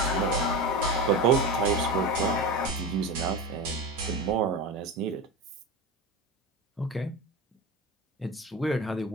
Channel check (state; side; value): normal; both; correlation 0.25